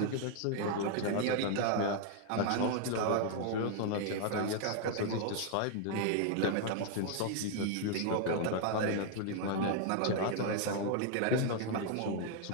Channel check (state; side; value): different; both; correlation 0.00